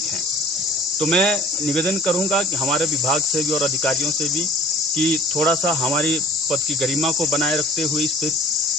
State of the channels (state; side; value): normal; both; correlation 0.48